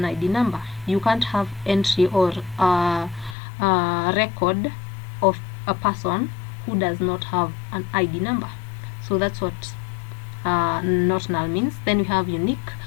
ID number. You can't have entry or record of a person who does not have an ID number. So that's what not null means. Then we have unique.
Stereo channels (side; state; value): right; drops out; at 3.4 s